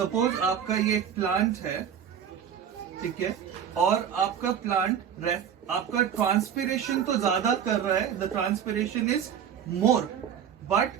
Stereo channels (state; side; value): quieter; left; 8.6 dB